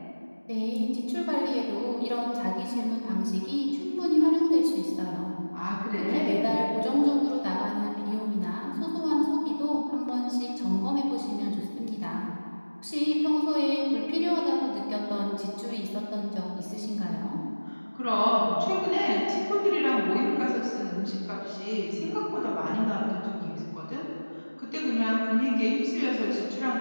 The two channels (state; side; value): inverted; both; correlation -1.00